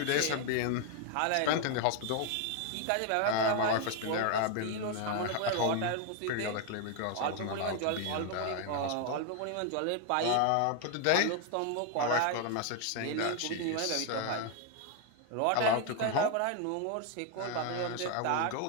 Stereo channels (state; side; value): different; both; correlation 0.01